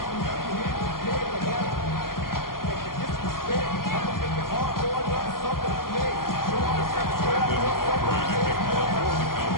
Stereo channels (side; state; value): right; late; 0.92 ms